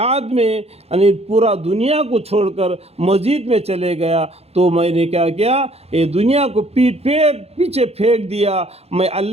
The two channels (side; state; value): left; late; 0.30 ms